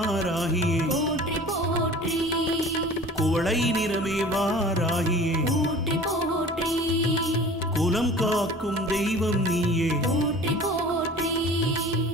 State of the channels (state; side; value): normal; both; correlation 0.43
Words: போற்றி போற்றி குவளை நிறமே வாராகியே போற்றி போற்றி குலம் காக்கும் தெய்வம் நீயே போற்றி போற்றி